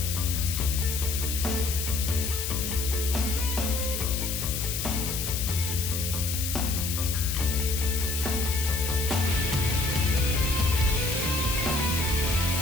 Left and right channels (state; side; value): noise; left; hiss, 3 dB below the sound